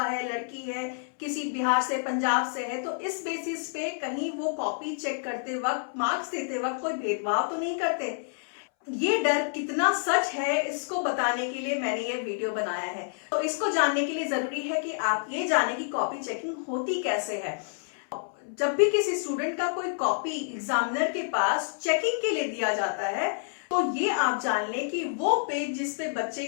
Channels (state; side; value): silent; right; 59 dB below the other